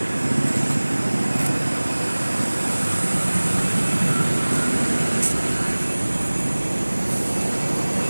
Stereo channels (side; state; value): both; inverted; correlation -1.00